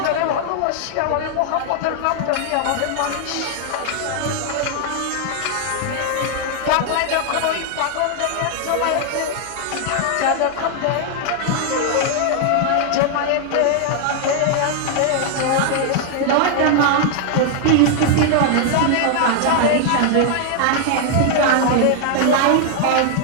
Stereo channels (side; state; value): both; different; correlation 0.00